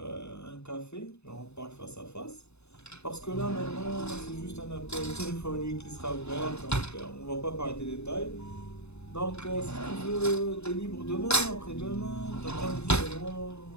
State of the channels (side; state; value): right; late; 0.80 ms